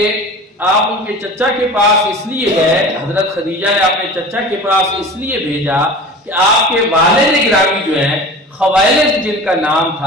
آپ ان کے چچا کے پاس اس لیے گئے، حضرت خدیجہ نے اپنے چچا کے پاس اس لیے بھیجا کہ آپ کے والد گرامی جو ہیں خویلد جن کا نام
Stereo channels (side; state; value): both; normal; correlation 0.37